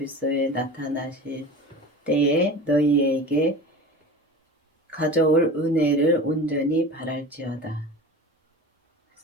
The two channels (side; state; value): both; normal; correlation 0.34